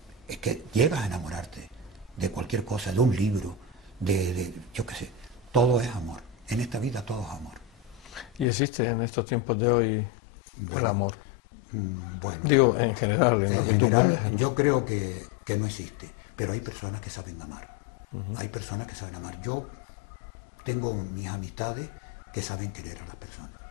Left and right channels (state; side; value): drops out; right; at 8.5 s